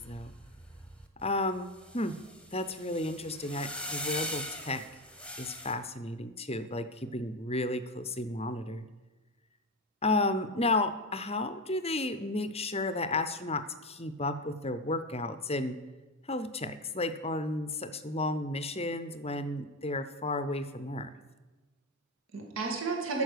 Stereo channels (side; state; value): both; normal; correlation 0.16